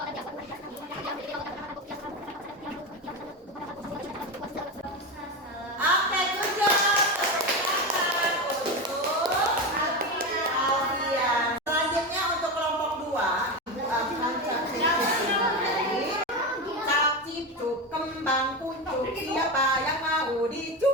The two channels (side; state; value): both; normal; correlation 0.18